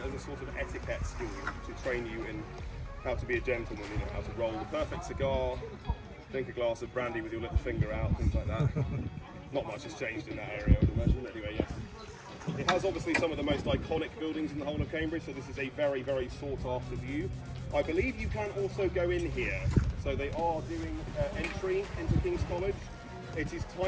as a sort of etiquette school to train you in how to be a gentleman, you know, how to roll the perfect cigar, drink a glass of brandy with your little finger out, things like that. Not much has changed in that area, I would imagine. Anyway, yes. It has obviously some of the most iconic buildings in the whole of Cambridge, so this is a very, very sought after view. I believe you can also go in here, so they are doing entry into King's College. It is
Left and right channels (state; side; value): identical; both; correlation 1.00